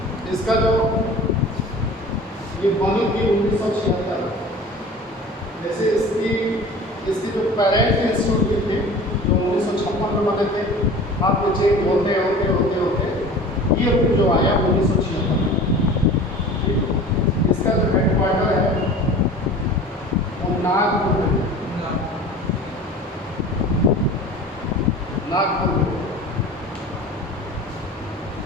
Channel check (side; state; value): both; normal; correlation 0.40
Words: इसका जो ये बनी थी 1976, जैसे इसकी जो पेरेंट इंस्टीट्यूट थे जो 1956 में बने थे, आपको चेंज होते ये जो आया 1976 में। इसका जो हेडक्वार्टर है वो नागपुर में, नागपुर में।